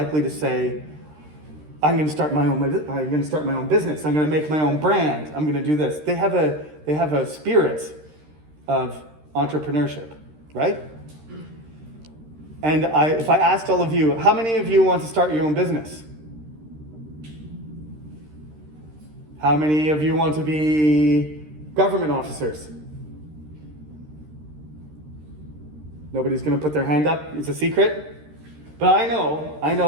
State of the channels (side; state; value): left; late; 13 ms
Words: to say, I'm going to start my own business. I'm going to make my own brand. I'm going to do this. They have a spirit of entrepreneurship, right? And if I asked all of you, how many of you want to start your own business? How many of you want to be government officers? Nobody's going to put their hand up. It's a secret. But I